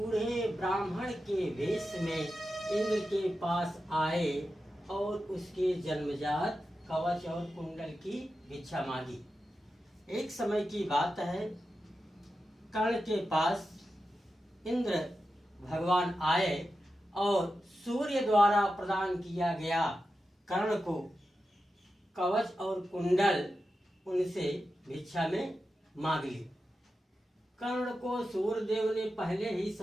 ब्राह्मण के वेश में इंद्र के पास आए और उसके जन्मजात कवच और कुंडल की भिक्षा मांगी। एक समय की बात है, कर्ण के पास इंद्र भगवान आए और सूर्य द्वारा प्रदान किया गया कर्ण को कवच और कुंडल उनसे भिक्षा में मांग ली। कर्ण को सूर्यदेव ने पहले ही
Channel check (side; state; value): both; normal; correlation 0.91